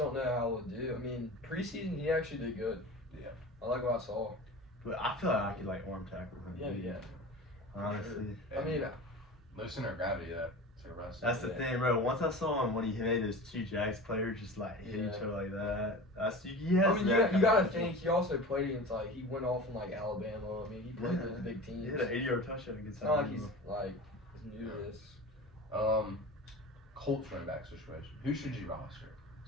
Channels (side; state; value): both; normal; correlation 0.34